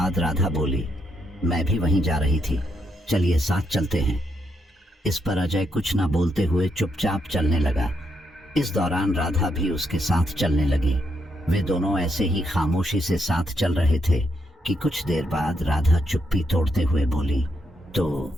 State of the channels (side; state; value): both; normal; correlation 0.79